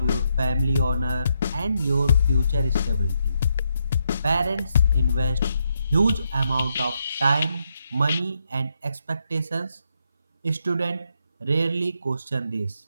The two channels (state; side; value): inverted; both; correlation -0.80